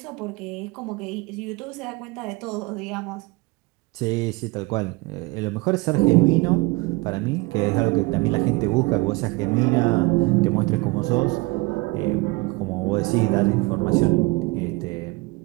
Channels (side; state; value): left; quieter; 24.1 dB